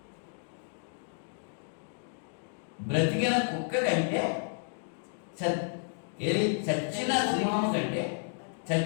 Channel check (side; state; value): right; silent; digital silence